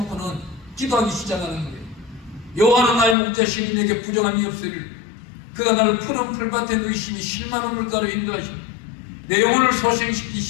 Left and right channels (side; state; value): right; drops out; at 3.2 s